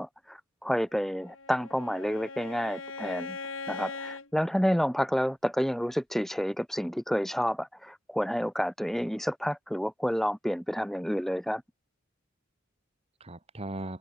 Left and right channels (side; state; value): both; normal; correlation 0.96